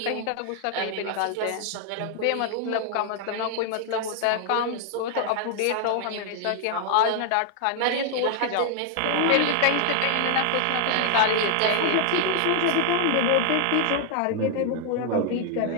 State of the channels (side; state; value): both; different; correlation 0.00